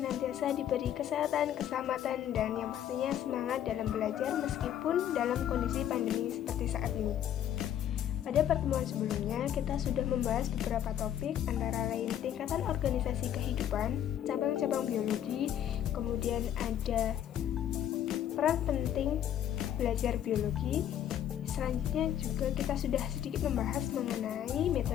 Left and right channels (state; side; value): quieter; right; 10.6 dB